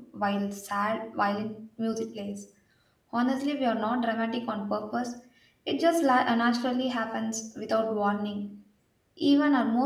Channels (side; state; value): both; identical; correlation 1.00